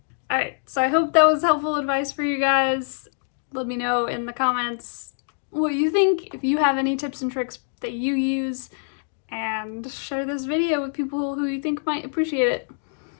Alright, so I hope that was helpful advice for you guys. Let me know in the comments what you think, if you have any tips and tricks that you use, and share this video with people who you think might appreciate it.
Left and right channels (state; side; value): silent; right; digital silence